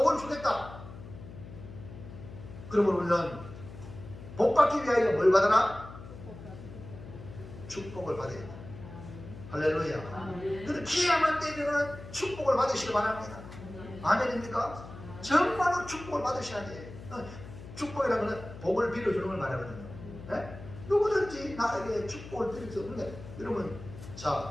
주겠다. 그러면 우리는 복 받기 위하여 뭘 받아라? 축복을 받아야 돼. 할렐루야. 그래서 기회만 되면은 축복을 받으시기 바랍니다. 아멘입니까? 정말로 축복을 받으셔야 돼요. 축복이라는 것은 복을 빌어주는 걸 말하거든요. 네? 누구든지 나에게 축복을 드릴 수 없는데, 여러분,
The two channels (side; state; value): left; noise; hum, 14 dB below the sound